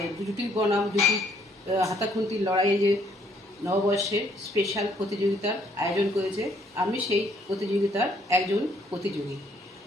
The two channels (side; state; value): both; normal; correlation 0.66